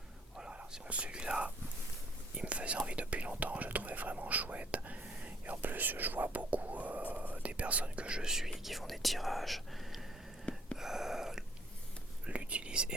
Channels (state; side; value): normal; both; correlation 0.62